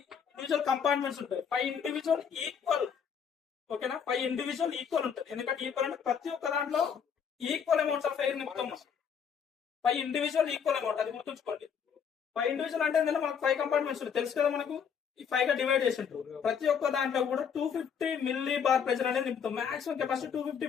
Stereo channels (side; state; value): right; quieter; 7.2 dB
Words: ఇండివిజువల్ కంపార్ట్మెంట్స్ ఉంటాయి. 5 ఇండివిజువల్ ఈక్వల్. ఓకేనా, 5 ఇండివిజువల్ ఈక్వల్ ఉంటుంది. ఎందుకంటే ఈక్వల్ అంటే ప్రతి ఒక్క దాంట్లో ఈక్వల్ అమౌంట్స్ ఆఫ్ ఎయిర్ నింపుతాం. 5 ఇండివిజువల్ ఈక్వల్ అమౌంట్, అది గుర్తుంచుకోండి. 5 ఇండివిజువల్ అంటే ఏంటంటే మనకు 5 కంపార్ట్మెంట్స్ ఉంటాయి తెలుసు కదా మనకు. ఈ 5 గా డివైడ్ చేసి ఉంటారు. ప్రతి ఒక్క దాంట్లో కూడా 250 మిల్లీ బార్ ప్రెషర్ అనేది నింపుతాం. Maximum capacity 250